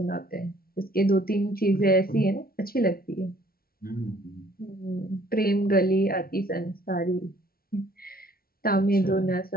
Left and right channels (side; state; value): right; late; 0.43 ms